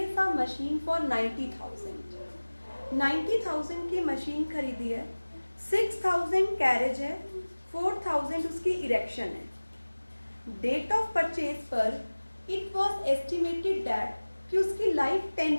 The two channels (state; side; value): inverted; both; correlation -1.00